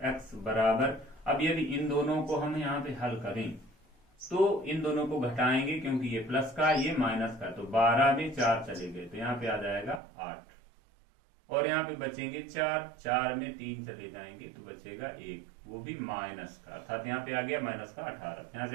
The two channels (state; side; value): drops out; left; at 10.0 s